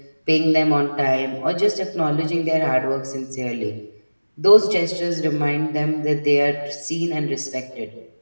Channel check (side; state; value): both; inverted; correlation -1.00